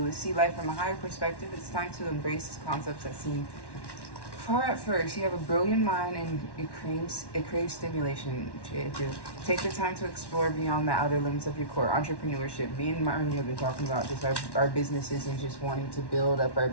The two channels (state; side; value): late; right; 1.1 ms